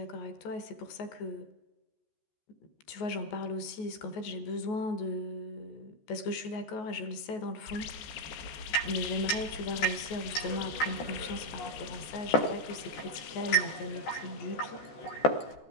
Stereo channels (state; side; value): late; right; 14 ms